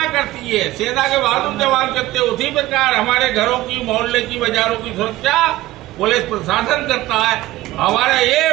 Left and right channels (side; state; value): left; quieter; 16.7 dB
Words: करती है, सेना के बहादुर जवान करते हैं, उसी प्रकार हमारे घरों की, मोहल्ले की, बाजारों की सुरक्षा पुलिस प्रशासन करता है। हमारा